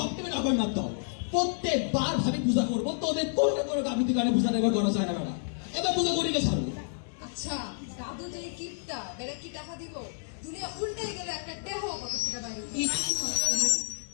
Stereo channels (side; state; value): right; silent; 57 dB below the other